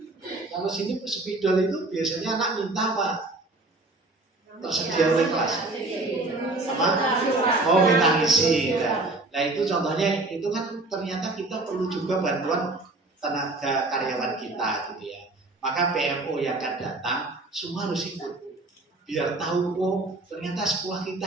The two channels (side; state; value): left; quieter; 3.0 dB